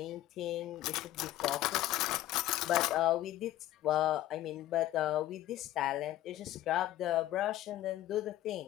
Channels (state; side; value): quieter; right; 14.2 dB